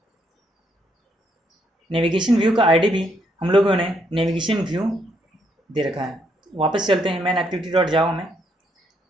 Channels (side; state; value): both; normal; correlation 0.74